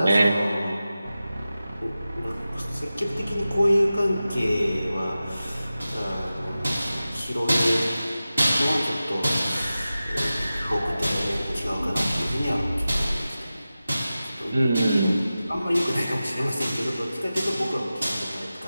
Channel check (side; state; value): both; inverted; correlation -0.95